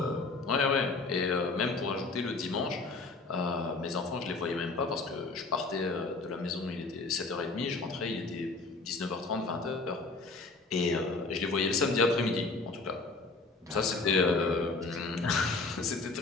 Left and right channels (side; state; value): right; quieter; 3.7 dB